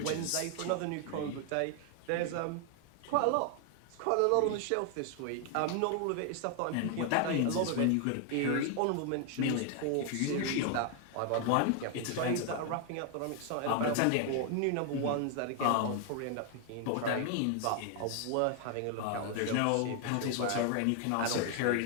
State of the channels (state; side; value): different; both; correlation 0.00